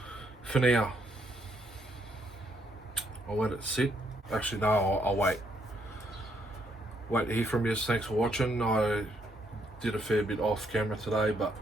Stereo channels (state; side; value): normal; both; correlation 0.73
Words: For now, I'll let it sit. Actually, no, I'll wait. Wait to hear from you. Thanks for watching. I did a fair bit off camera today, but